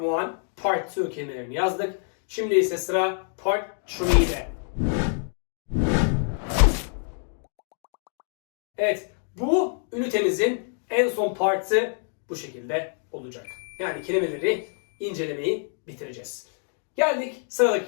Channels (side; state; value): right; silent; 61 dB below the other